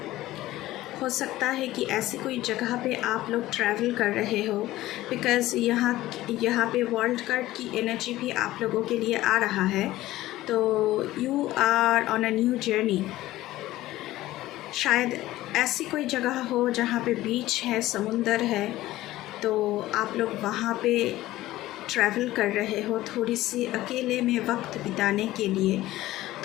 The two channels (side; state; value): right; quieter; 16.1 dB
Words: सकता है कि ऐसी कोई जगह पे आप लोग ट्रैवल कर रहे हो, बिकॉज़ यहाँ पे वर्ल्ड कार्ड की एनर्जी भी आप लोगों के लिए आ रहा है। तो you are on a new journey. शायद ऐसी कोई जगह हो जहाँ पे बीच है, समुंदर है, तो आप लोग वहाँ पे ट्रैवल कर रहे हो थोड़ी सी अकेले में वक्त बिताने के लिए,